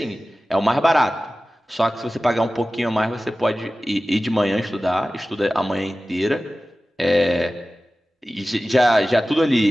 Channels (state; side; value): normal; both; correlation 0.96